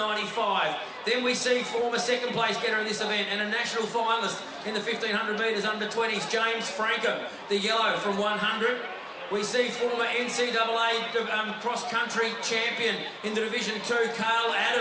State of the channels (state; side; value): identical; both; correlation 1.00